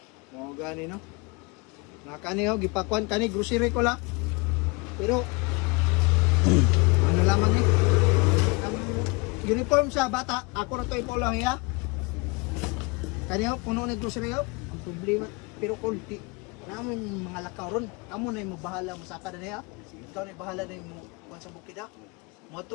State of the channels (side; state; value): right; quieter; 28.7 dB